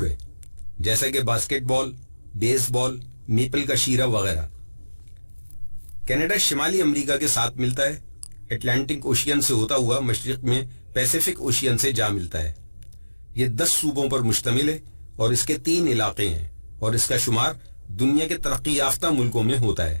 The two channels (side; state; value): both; inverted; correlation -1.00